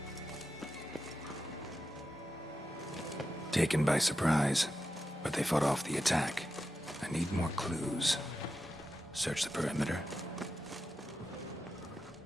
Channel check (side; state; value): both; normal; correlation 0.89